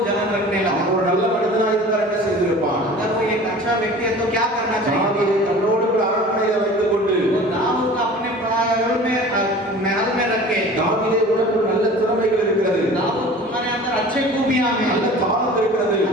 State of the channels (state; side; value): normal; both; correlation 0.42